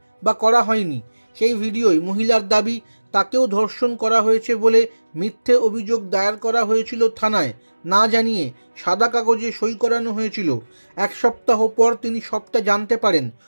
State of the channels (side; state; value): both; inverted; correlation -1.00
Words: বা করা হয়নি। সেই ভিডিওয় মহিলার দাবি তাকেও ধর্ষণ করা হয়েছে বলে মিথ্যে অভিযোগ দায়ের করা হয়েছিল থানায়, না জানিয়ে সাদা কাগজে সই করানো হয়েছিল। এক সপ্তাহ পর তিনি সবটা জানতে পারেন।